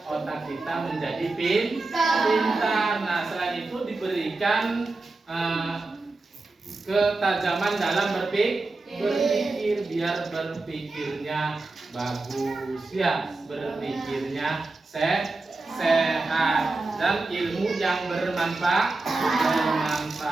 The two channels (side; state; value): left; quieter; 3.3 dB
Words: otak kita menjadi pintar. Nah, selain itu diberikan ketajaman dalam berpikir biar berpikirnya bagus ya, berpikirnya sehat dan ilmu yang bermanfaat.